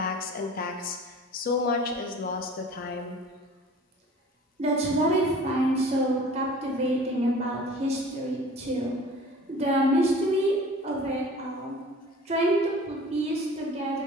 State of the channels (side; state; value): both; normal; correlation 0.45